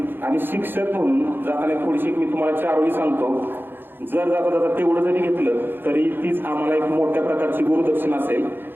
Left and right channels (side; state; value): left; late; 0.099 ms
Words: आणि शिक्षक म्हणून जाताना थोडीशी मी तुम्हाला 4 वेळी सांगतो, जर जाता जाता तेवढं जरी घेतलं तरी तीच आम्हाला एक मोठ्या प्रकारची गुरुदक्षिणा असेल.